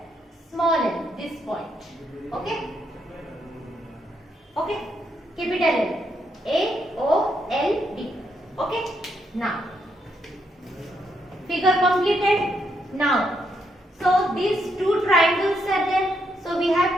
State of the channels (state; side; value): normal; both; correlation 0.77